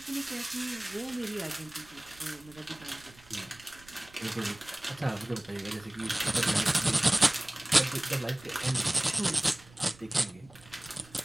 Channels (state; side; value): noise; right; rumble, 24 dB below the sound